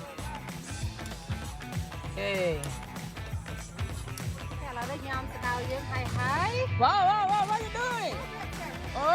អូខេ តែឥឡូវនេះញ៉ាំស្ដៅយើងហើយ Wow, what are you doing?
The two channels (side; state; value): both; identical; correlation 1.00